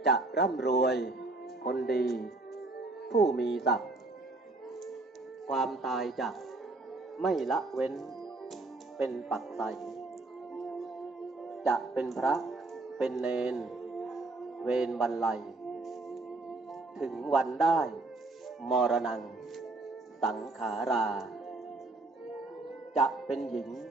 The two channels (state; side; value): quieter; left; 3.2 dB